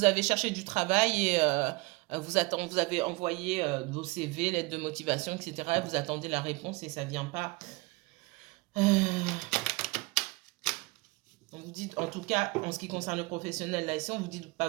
avez cherché du travail et vous avez envoyé vos CV, lettres de motivation, etc. Vous attendez la réponse et ça ne vient pas. On vous dit, en tout cas, en ce qui concerne le professionnel, là ici, on vous dit de ne pas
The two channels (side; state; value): left; quieter; 24.8 dB